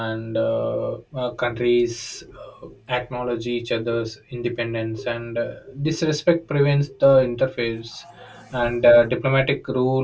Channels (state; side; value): identical; both; correlation 1.00